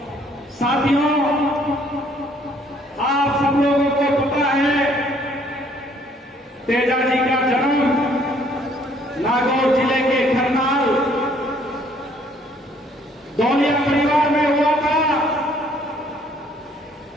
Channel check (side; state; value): both; normal; correlation 0.63